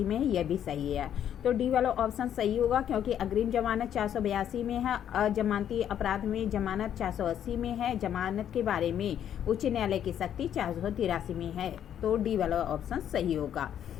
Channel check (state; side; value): quieter; right; 9.9 dB